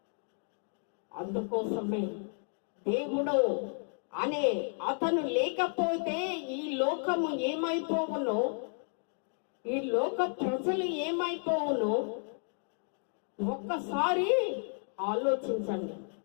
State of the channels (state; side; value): silent; right; 56 dB below the other